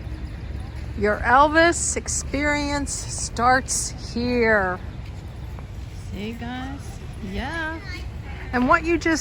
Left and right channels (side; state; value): both; identical; correlation 1.00